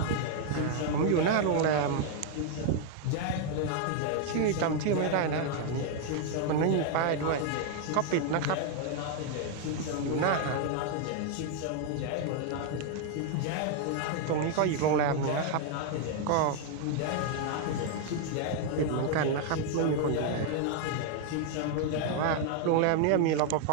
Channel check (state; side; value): different; both; correlation 0.00